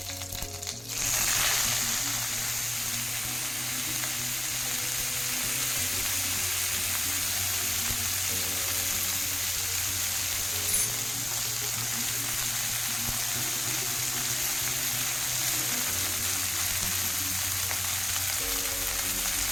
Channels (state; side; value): noise; left; hum, 24 dB below the sound